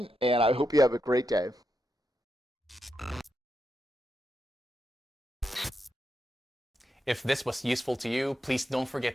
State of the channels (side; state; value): both; normal; correlation 0.85